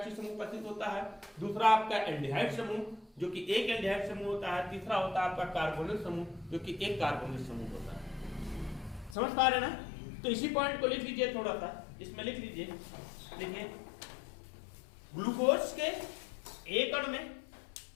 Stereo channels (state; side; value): drops out; right; at 9.2 s